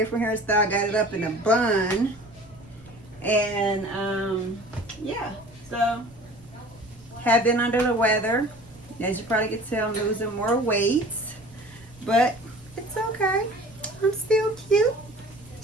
hairstyle. Got it up in a bun. And, yeah. So, have been under the weather. As you probably can tell, I'm losing more weight. But, it's okay. I'm still cute.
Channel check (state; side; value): noise; right; rumble, 25 dB below the sound